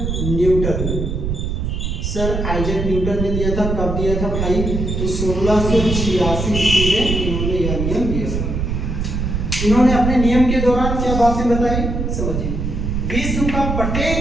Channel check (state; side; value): noise; right; rumble, 2 dB below the sound